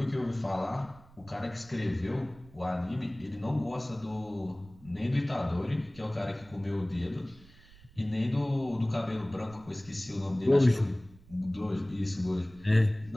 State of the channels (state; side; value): noise; right; rumble, 23 dB below the sound